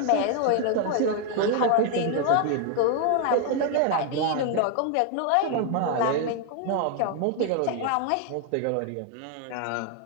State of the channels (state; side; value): different; both; correlation 0.00